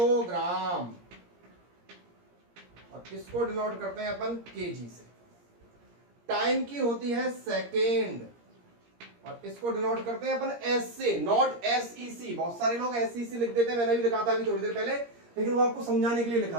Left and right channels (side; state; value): left; late; 17 ms